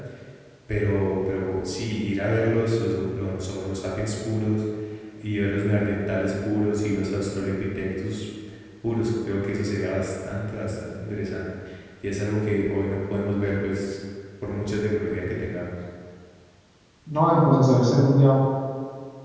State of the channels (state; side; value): identical; both; correlation 1.00